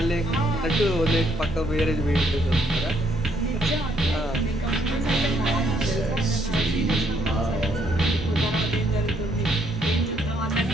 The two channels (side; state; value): both; normal; correlation 0.71